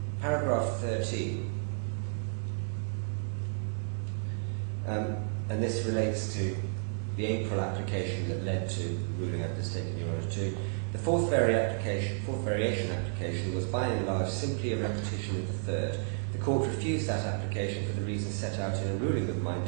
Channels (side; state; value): left; silent; digital silence